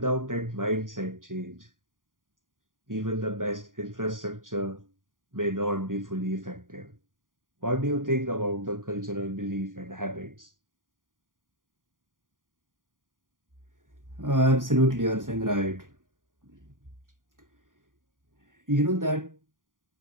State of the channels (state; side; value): late; left; 0.89 ms